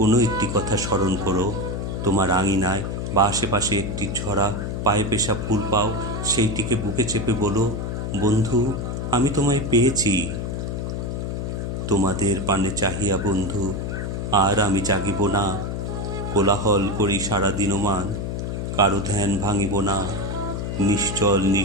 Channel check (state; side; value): noise; left; hum, 3 dB below the sound